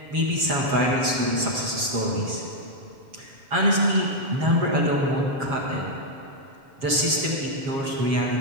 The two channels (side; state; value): left; late; 7.3 ms